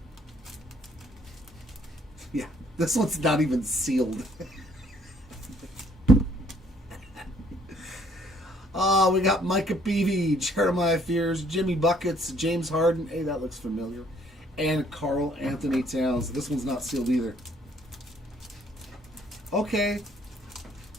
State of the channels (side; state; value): both; normal; correlation 0.64